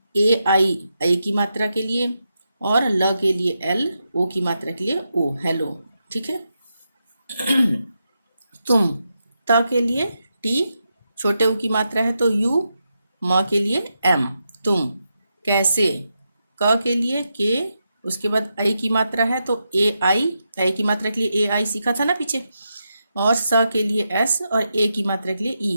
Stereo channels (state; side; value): inverted; both; correlation -0.86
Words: AI आई की मात्रा के लिए, और ल के लिए L, O की मात्रा के लिए O, हेलो, ठीक है। तुम, त के लिए T, छोटे U की मात्रा है तो U, म के लिए M, तुम। कैसे, क के लिए K, उसके बाद आई की मात्रा है तो AI, आई की मात्रा के लिए AI सीखा था ना पीछे, और स के लिए S और A की मात्रा के लिए